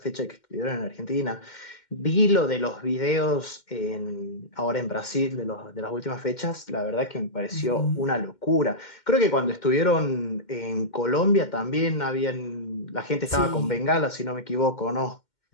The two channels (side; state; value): right; late; 2.1 ms